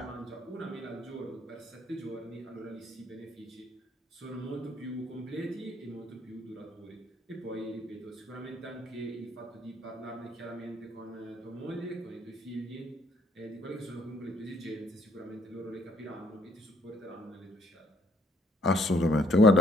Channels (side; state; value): both; normal; correlation 0.64